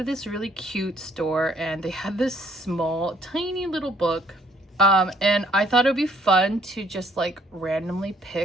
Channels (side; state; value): both; normal; correlation 0.64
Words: this really cute store and they had this small tiny little book, and I thought it would be fun to just like randomly